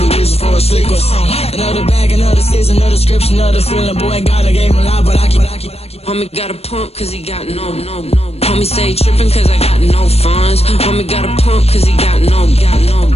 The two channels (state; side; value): late; right; 0.30 ms